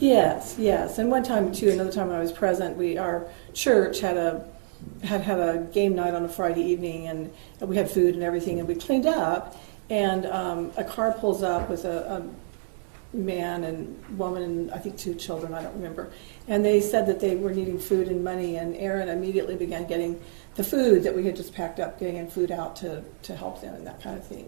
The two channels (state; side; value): silent; left; digital silence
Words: Yes. And one time, too, another time when I was present, our church had a game night on a Friday evening, and we had food and everything, and we cleaned up, and a car pulls up with a man and woman and I think 2 children, I don't remember, and they said that they were needing food and money, and Aaron immediately began getting the food that we had just packed up, getting food out to help them and that kind of